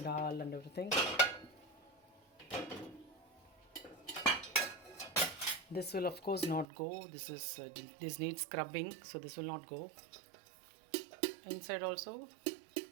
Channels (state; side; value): drops out; left; at 6.7 s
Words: dal and everything. This will of course not go. This needs scrubbing, so this will not go. Inside also,